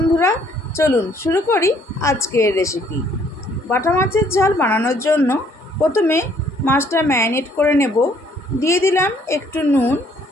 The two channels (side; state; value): both; normal; correlation 0.63